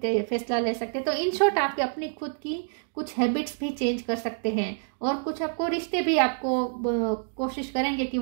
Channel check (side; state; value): left; silent; digital silence